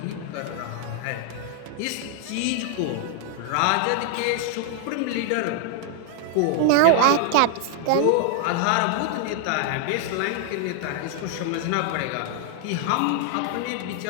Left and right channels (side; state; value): both; different; correlation 0.00